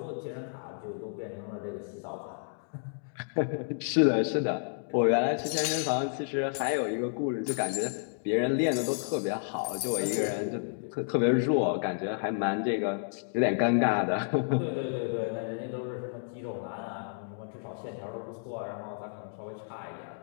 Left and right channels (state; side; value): silent; right; digital silence